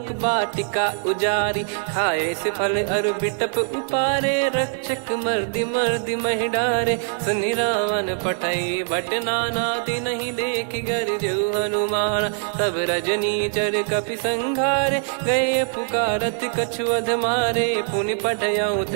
वाटिका उजारी। खाए से फल अर बिटप उपारे, रक्षक मर्दि मर्दि महि डारे। सुनि रावण पटई भट नाना, तिनहि देखि गरजउ हनुमान। तब रजनी चर कपि संघारे, गए पुकारत कछु अध मारे। पुनि पठयऊ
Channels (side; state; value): left; silent; 64 dB below the other